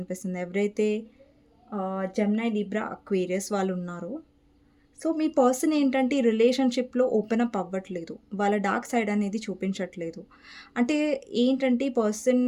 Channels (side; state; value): both; identical; correlation 1.00